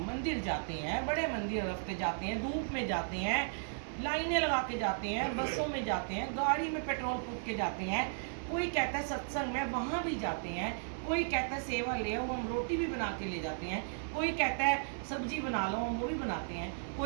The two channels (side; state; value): left; silent; 54 dB below the other